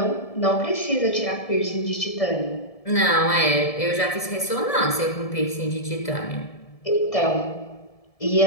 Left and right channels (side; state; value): right; late; 1.7 ms